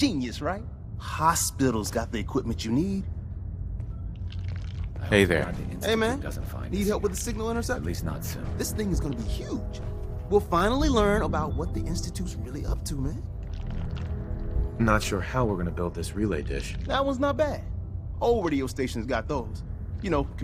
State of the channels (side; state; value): both; identical; correlation 1.00